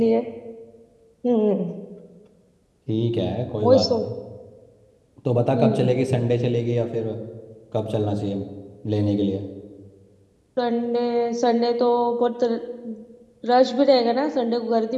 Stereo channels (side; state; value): both; identical; correlation 1.00